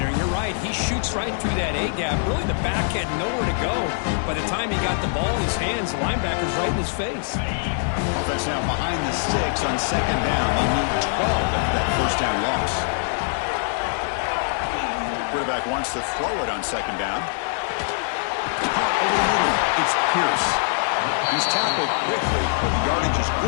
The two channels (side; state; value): right; silent; digital silence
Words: And you're right, he shoots right through that A-gap. Really, the back had nowhere to go. By the time he got the ball in his hands, the linebacker's right in his face. Offense now behind the 6 on second down. They need 12 after that first down loss. Quarterback wants to throw it on second down. Caught over the middle. It's Pierce. He's tackled quickly, but the yardage is